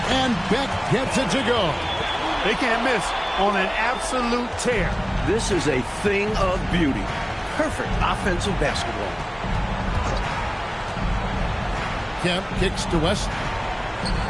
and Beck gets it to go. They can't miss on an absolute tear. This is a thing of beauty. Perfect offensive basketball. Kemp kicks to West.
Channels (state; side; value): identical; both; correlation 1.00